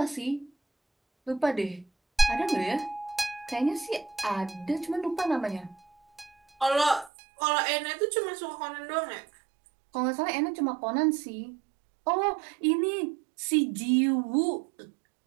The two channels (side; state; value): left; drops out; at 7.1 s